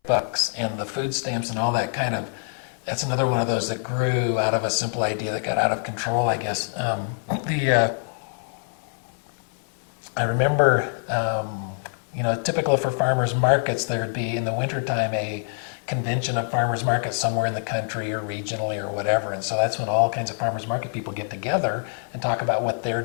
bucks and the food stamps and all that that's another one of those that grew out of a simple idea that got out of control, I guess. I remember, typical for farmers markets, there would be in the wintertime a convention of farmers markets somewhere in the country or regionally or whatever, and so that's when all kinds of farmers market people get together and talk about what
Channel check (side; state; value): right; silent; 59 dB below the other